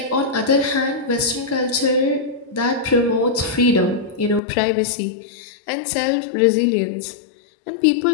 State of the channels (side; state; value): right; drops out; at 4.4 s